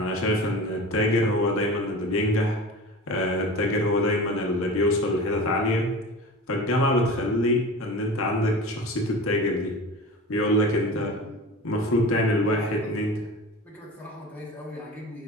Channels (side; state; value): both; normal; correlation 0.34